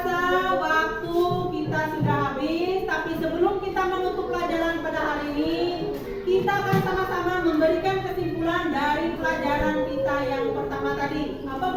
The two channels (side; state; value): both; identical; correlation 1.00